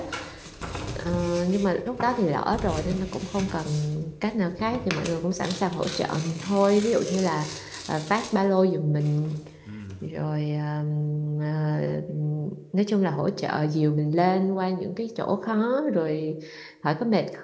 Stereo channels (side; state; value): both; identical; correlation 1.00